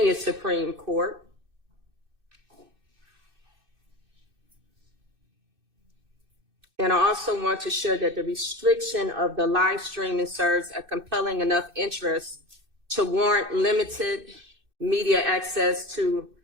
Supreme Court. And I also want to share that the restriction of the live streaming serves a compelling enough interest to warrant limited media access to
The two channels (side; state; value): left; late; 2.6 ms